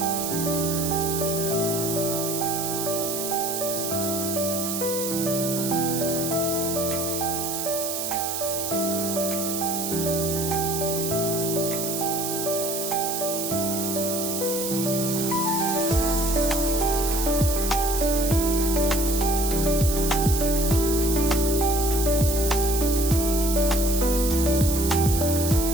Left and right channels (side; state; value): right; noise; hiss, 3 dB below the sound